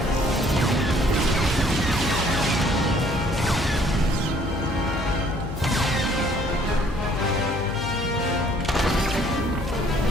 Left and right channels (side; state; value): left; noise; hum, 7 dB below the sound